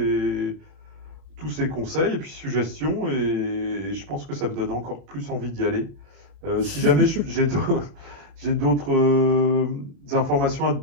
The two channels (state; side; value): late; left; 32 ms